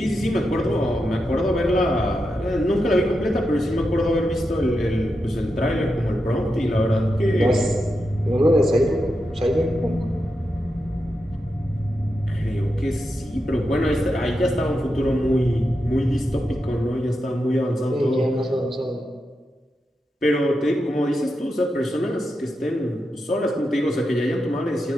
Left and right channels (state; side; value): normal; both; correlation 0.87